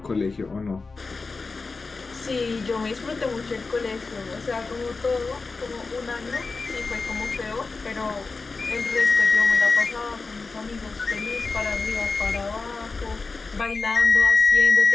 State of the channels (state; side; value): quieter; right; 4.1 dB